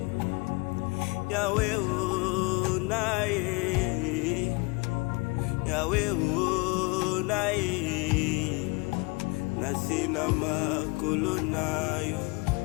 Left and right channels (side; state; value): right; quieter; 27.1 dB